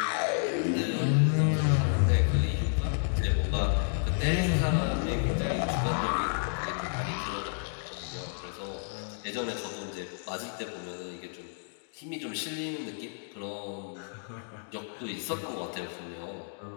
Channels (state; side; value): silent; right; digital silence